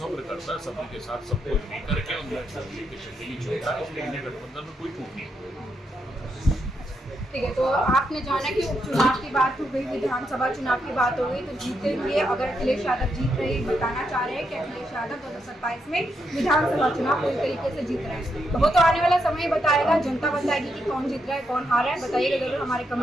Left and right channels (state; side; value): normal; both; correlation 0.81